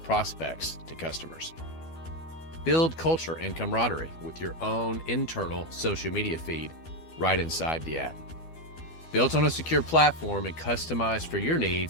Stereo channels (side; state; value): right; late; 12 ms